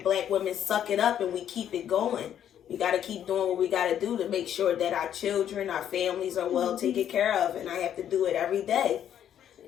Black women suck it up and we keep it going. We got to keep doing what we got to do to make sure that our children, our families are well taken care of. And I have to do it every day.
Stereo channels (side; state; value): right; quieter; 10.0 dB